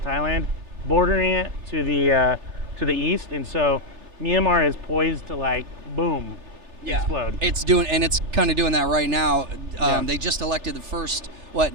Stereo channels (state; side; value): late; left; 3.4 ms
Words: Thailand, bordering it to the east, and so Myanmar is poised to like boom, explode. It's kind of doing that right now. They just elected the first